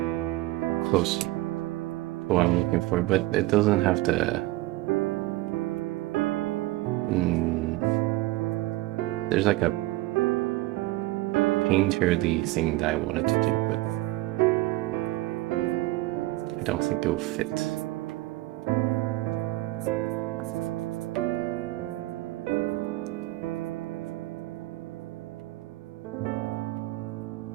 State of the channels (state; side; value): quieter; left; 18.6 dB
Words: close to what I'm looking for, but it doesn't have the. Mm, there's like a painterly thing that I wanted to do, but I don't think it will fit.